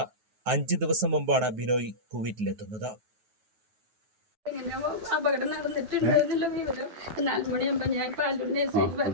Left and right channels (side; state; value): left; late; 9.4 ms